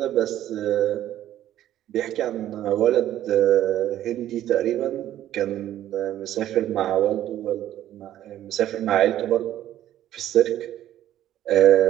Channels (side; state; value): left; quieter; 12.5 dB